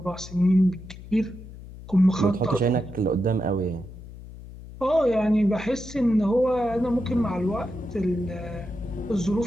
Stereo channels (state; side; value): noise; left; hum, 15 dB below the sound